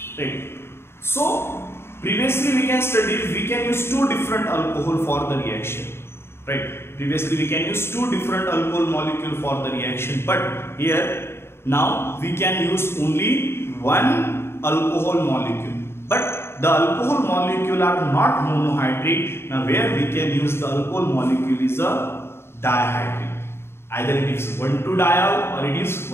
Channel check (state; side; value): late; right; 0.12 ms